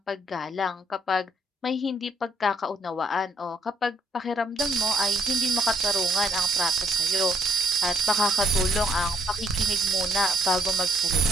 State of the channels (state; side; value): normal; both; correlation 0.69